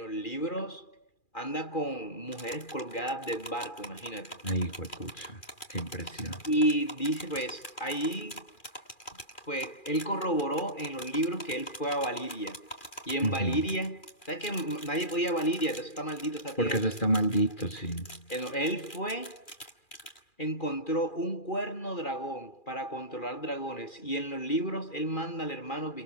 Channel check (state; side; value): late; right; 2.4 ms